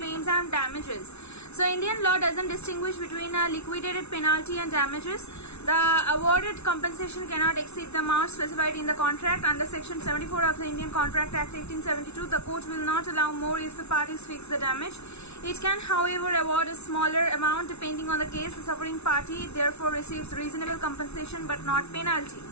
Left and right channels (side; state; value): right; late; 0.81 ms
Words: and damages. So Indian law doesn't distinguish between a liquidated penalty and damages. The awarded compensation cannot exceed the amount specified in the contract. Under Section 74 of the Indian Contract Act 1872, the court will not allow more if the parties fix the damage. It can, however, award a smaller amount depending on the case. The suffering party therefore receives reasonable compensation but not penalty.